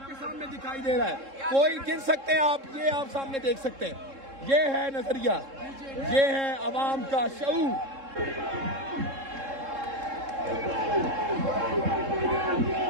सामने दिखाई दे रहा है। कोई गिन सकते हैं आप, ये आप सामने देख सकते हैं। ये है नजरिया, ये है अवाम का शऊर।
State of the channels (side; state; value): left; late; 3.7 ms